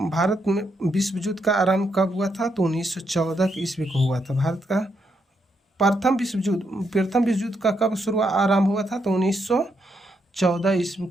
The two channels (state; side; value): normal; both; correlation 0.79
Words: भारत में विश्व युद्ध का आरंभ कब हुआ था? तो 1914 ईस्वी को हुआ था। भारत का प्रथम विश्व युद्ध का कब आरंभ हुआ था? तो 1914 ईस्वी